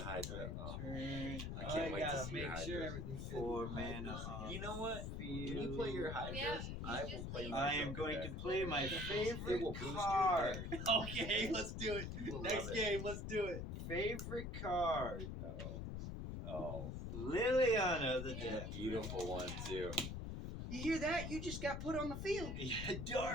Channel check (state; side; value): noise; left; rumble, 5 dB below the sound